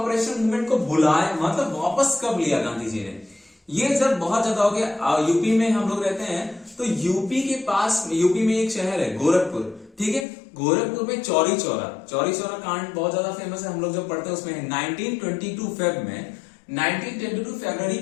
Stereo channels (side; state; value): right; drops out; at 10.2 s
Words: मूवमेंट को बुलाए, मतलब वापस कब लिया गांधी जी ने, ये जब बहुत ज्यादा हो गया। यूपी में हम लोग रहते हैं, तो यूपी के पास, यूपी में एक शहर है गोरखपुर, ठीक है, गोरखपुर में चौरी चौरा कांड बहुत ज्यादा फेमस है, हम लोग जब पढ़ते हैं उसमें 1922 फेब में, 1922 फरवरी